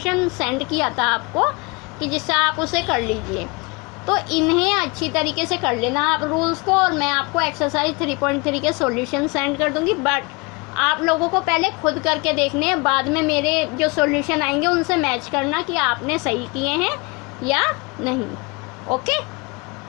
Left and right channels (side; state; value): right; quieter; 28.4 dB